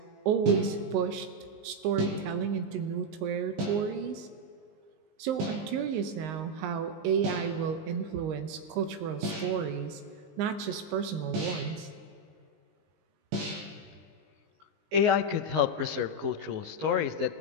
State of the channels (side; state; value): left; late; 19 ms